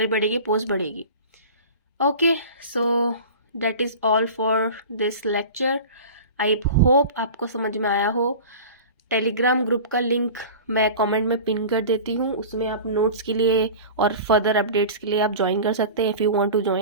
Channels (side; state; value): both; inverted; correlation -0.35